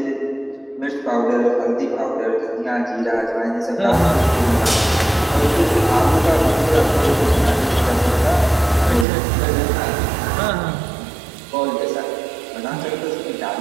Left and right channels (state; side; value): drops out; left; at 9.1 s